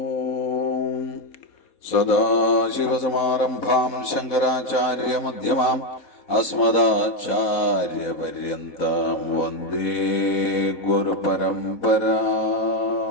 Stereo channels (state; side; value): late; right; 4.1 ms